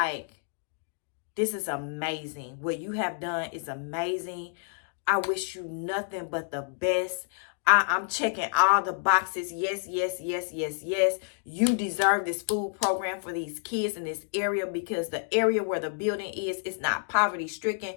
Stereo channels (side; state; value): right; silent; digital silence